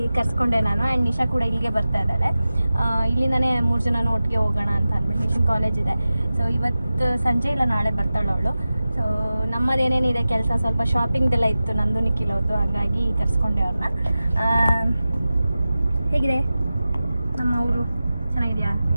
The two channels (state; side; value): inverted; both; correlation -0.95